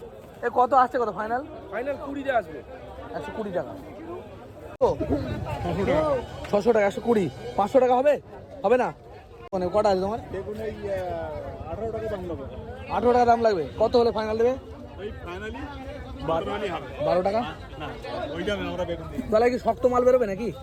এ কত আসছে? কত ফাইনাল? ফাইনাল 20 টাকা আসবে। 120 টাকা। 600 টাকা, 120, 500 টাকা হবে? হবে না? মানে কটা আছে তোমার? 18 টাকা দাম লাগবে। কত হলে ফাইনাল দেবে? 12 টাকা। তাহলে কি শক্ত মাল বেরোবে নাকি?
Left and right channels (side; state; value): both; identical; correlation 1.00